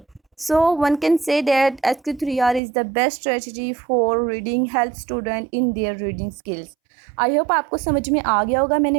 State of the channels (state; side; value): drops out; left; at 2.6 s